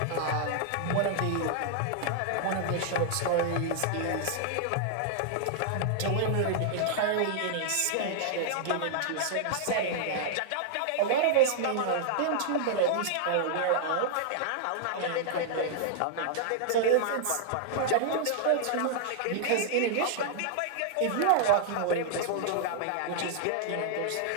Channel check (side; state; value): both; different; correlation -0.01